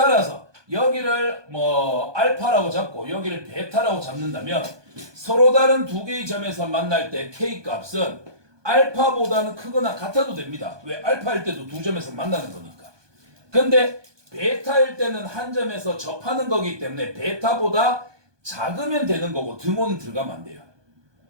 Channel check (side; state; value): left; late; 1.2 ms